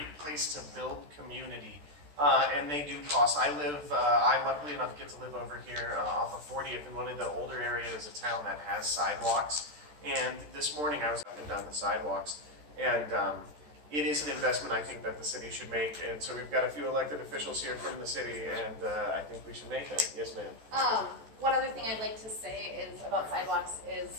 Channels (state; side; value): late; left; 14 ms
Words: place to build community, and they do cost. I luckily enough get to live over here off of 40th in one of the older areas of town that has sidewalks. And this morning I was up and down the sidewalks, and it is an investment I think that the city should make. And so we've got a few elected officials here from the city, and I think we should make that. Yes, ma'am. One other thing I'd like to say is about sidewalks